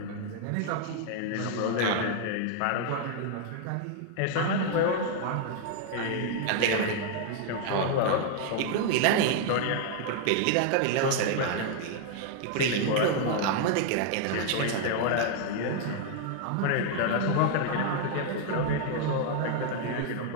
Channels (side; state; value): both; different; correlation 0.00